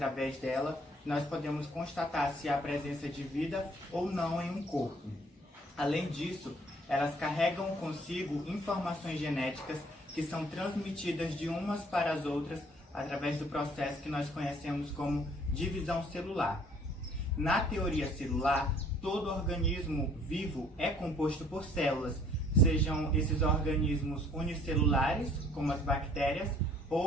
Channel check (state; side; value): normal; both; correlation 0.59